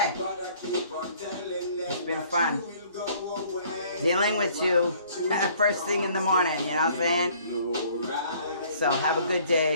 it's been fun dealing with you first thing in the morning, you know what I'm saying? So have a good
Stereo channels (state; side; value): inverted; both; correlation -0.57